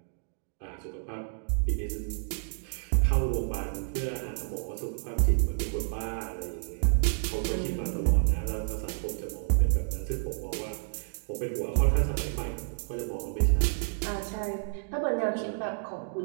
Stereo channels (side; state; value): left; silent; digital silence